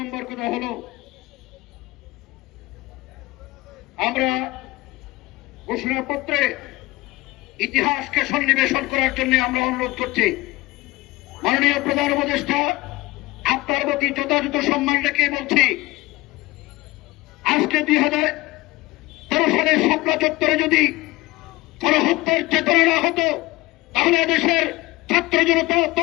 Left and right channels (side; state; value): right; quieter; 20.3 dB